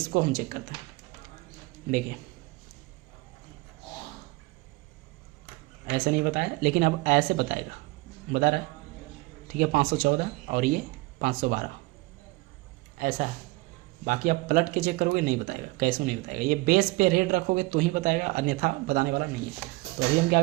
हम चेक करते हैं। देखिए ऐसे नहीं बताया, लेकिन अब ऐसे बताएगा, बता रहा है, ठीक है। 514 और ये 512 ऐसा है। बाकी आप पलट के चेक करोगे नहीं बताएगा, कैसे नहीं बताएगा। ये बेस पे रेड रखोगे तो ही बताएगा, अन्यथा बताने वाला नहीं है। तो अभी हम क्या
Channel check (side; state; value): left; quieter; 22.3 dB